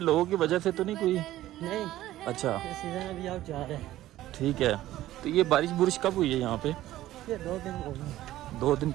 लोगों की वजह से तो नहीं कोई? नहीं, अच्छा सीजन अभी आउट जा रहा है। ठीक है। तो ये बारिश बुरिश कब हुई है यहाँ पे? ये 2 दिन हो गए। 2 दिन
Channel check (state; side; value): quieter; left; 14.7 dB